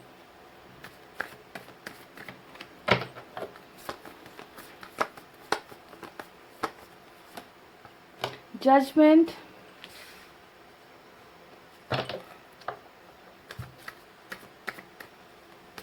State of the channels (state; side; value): identical; both; correlation 1.00